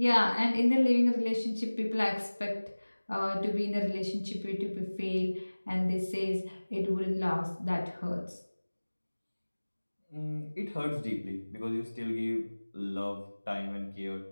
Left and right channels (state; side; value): inverted; both; correlation -1.00